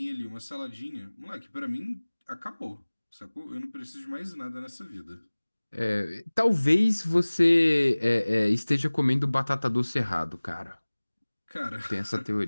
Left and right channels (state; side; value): inverted; both; correlation -1.00